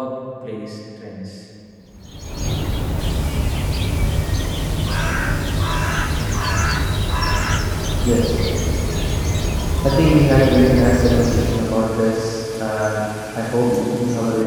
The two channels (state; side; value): identical; both; correlation 1.00